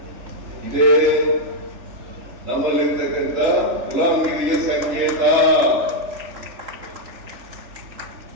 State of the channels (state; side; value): late; left; 3.4 ms